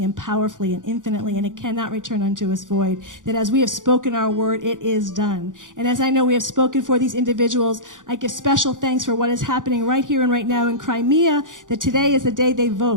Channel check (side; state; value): left; late; 0.88 ms